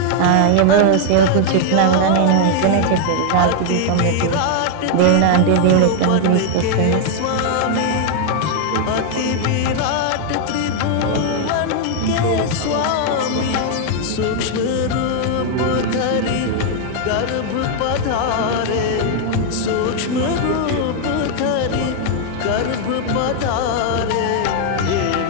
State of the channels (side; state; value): both; different; correlation 0.00